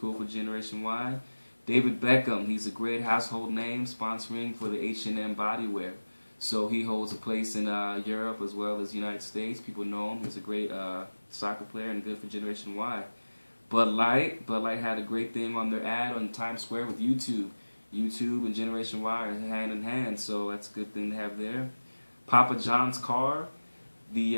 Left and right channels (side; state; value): both; inverted; correlation -1.00